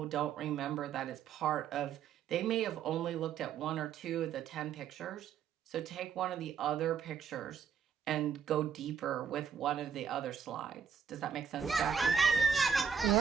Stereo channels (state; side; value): quieter; left; 7.1 dB